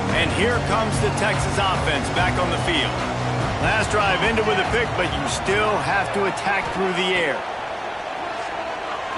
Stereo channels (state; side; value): identical; both; correlation 1.00